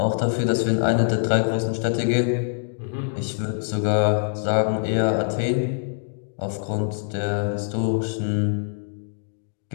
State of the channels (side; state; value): right; silent; digital silence